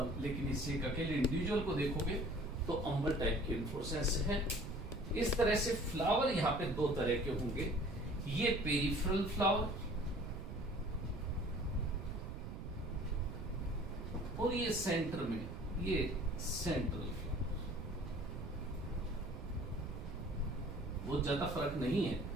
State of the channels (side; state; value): right; noise; rumble, 7 dB below the sound